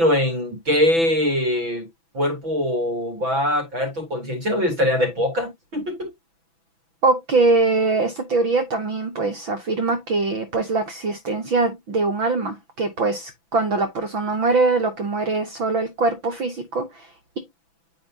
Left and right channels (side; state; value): left; late; 6.0 ms